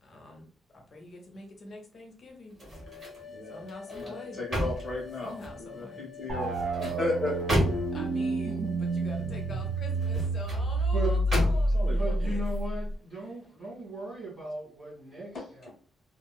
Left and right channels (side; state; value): both; normal; correlation 0.75